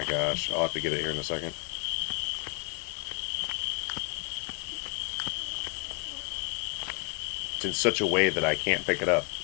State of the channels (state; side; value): quieter; right; 36.9 dB